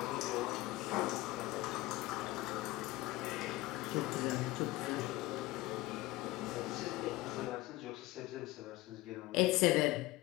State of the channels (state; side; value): quieter; right; 18.7 dB